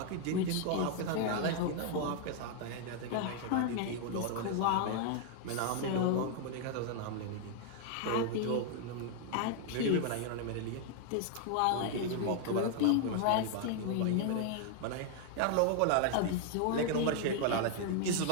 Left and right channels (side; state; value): both; different; correlation 0.00